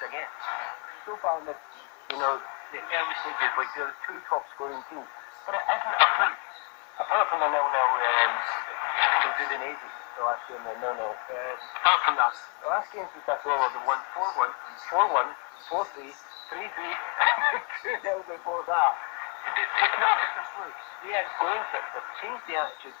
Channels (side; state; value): right; quieter; 33.6 dB